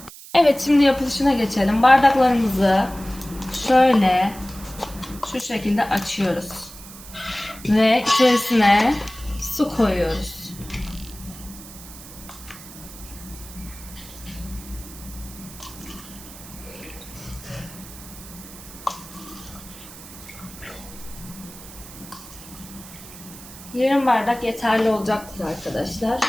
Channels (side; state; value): right; noise; hiss, 16 dB below the sound